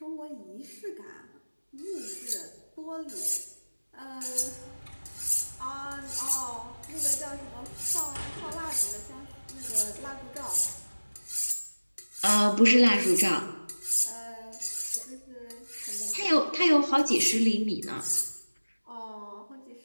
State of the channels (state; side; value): inverted; both; correlation -1.00